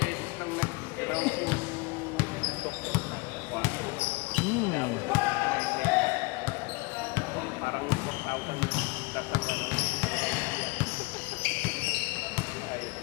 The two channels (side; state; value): right; quieter; 26.7 dB